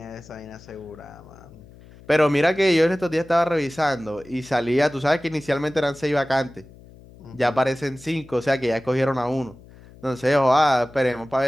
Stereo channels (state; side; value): noise; left; hum, 22 dB below the sound